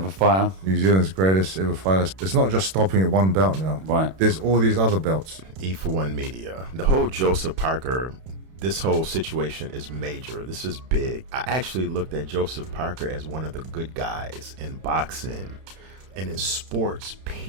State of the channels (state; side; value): late; left; 32 ms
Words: fighter? New Zealand's greatest ever fighter. It's not just stopping at one belt now. Right. There's all these other belts. E4One Media. The whole Joseph Parker, this whole situation is major. This is big. I actually looked at Joseph Parker as one of the good guys in boxing and in sports,